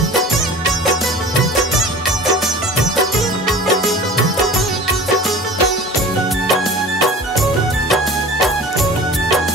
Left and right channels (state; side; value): normal; both; correlation 0.40